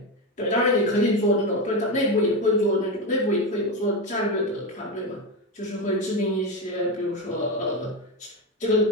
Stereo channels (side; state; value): both; normal; correlation 0.14